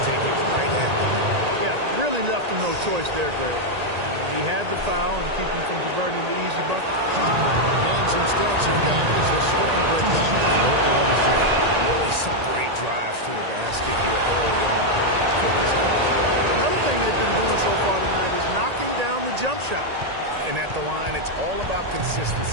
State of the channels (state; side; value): late; left; 1.8 ms